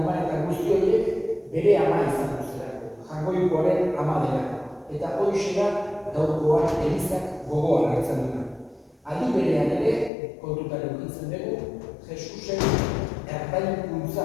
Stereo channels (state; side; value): drops out; right; at 10.1 s